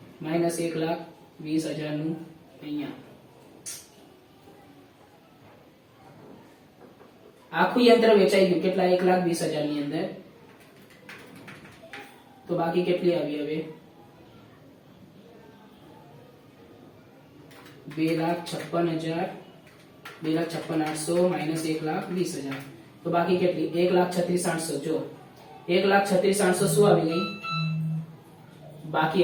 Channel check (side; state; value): both; identical; correlation 1.00